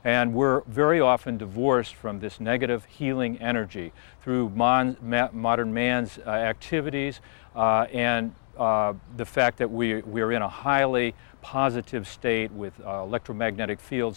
And we're very often divorced from this negative healing energy through modern man's activities and the fact that we're in a highly positive state with electromagnetic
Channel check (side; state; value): right; silent; digital silence